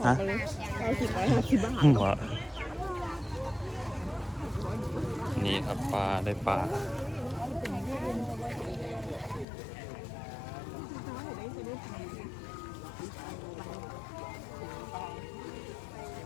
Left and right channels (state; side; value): drops out; right; at 9.5 s